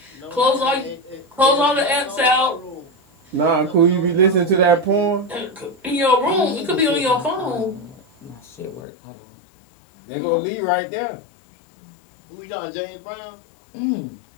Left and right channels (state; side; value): drops out; right; at 8.8 s